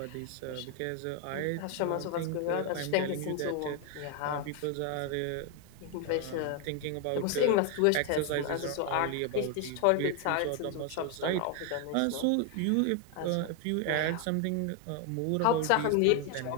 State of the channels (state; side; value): different; both; correlation 0.01